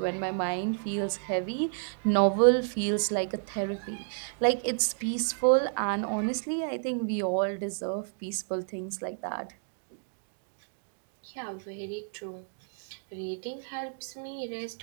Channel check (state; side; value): silent; left; digital silence